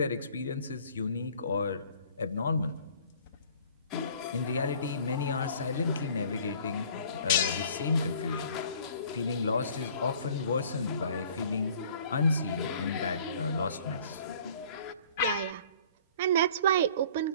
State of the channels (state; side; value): inverted; both; correlation -0.52